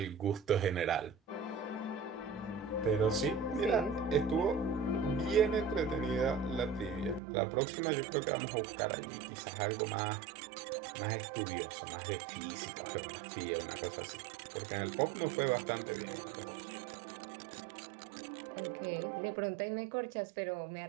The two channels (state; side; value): drops out; left; at 7.2 s